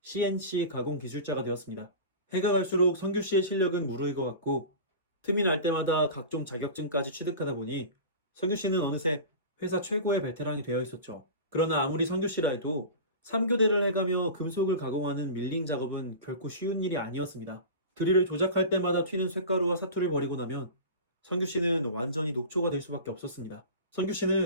가공 기술자가 되었습니다. 해가 갈수록 성규 씨의 실력은 무르익어갔고 틈이 날 때마다 각종 자격증까지 취득하다 보니 성규 씨는 어느새 회사 최고의 베테랑이 되어 있었죠. 그러나 아무리 성규 씨라 해도 3교대를 해가며 금속을 가공하는 밀링 작업은 결코 쉬운 일이 아니었습니다. 드릴을 조작할 때마다 튀는 쇳가루와 사투를 벌이고 나면 성규 씨는 완전히 녹초가 될 수밖에 없었습니다. 성규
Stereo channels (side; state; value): both; inverted; correlation -0.32